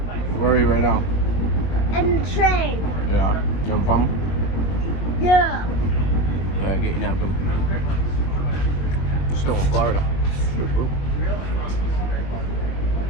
Where are you right now? And the train. Yeah. You having fun? Yeah. Getting out of them. Still in Florida.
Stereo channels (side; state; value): right; late; 22 ms